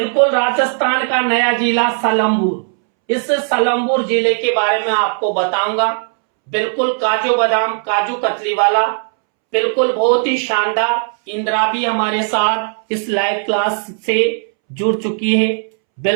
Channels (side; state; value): left; silent; 68 dB below the other